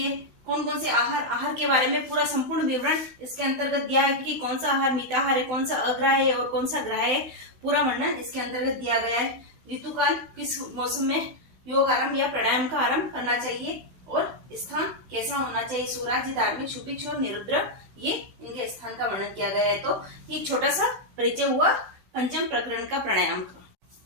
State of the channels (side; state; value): left; late; 16 ms